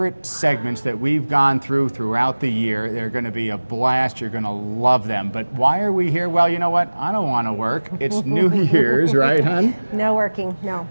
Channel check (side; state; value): both; inverted; correlation -1.00